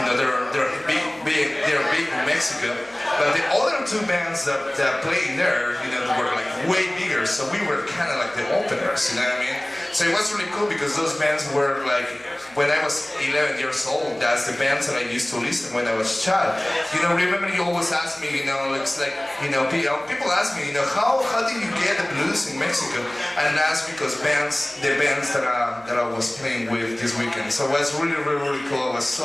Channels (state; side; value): noise; right; hum, 29 dB below the sound